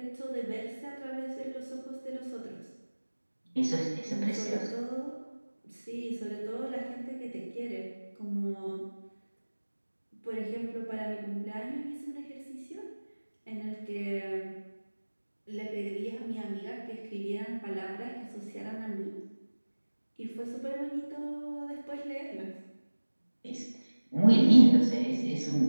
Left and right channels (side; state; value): both; inverted; correlation -1.00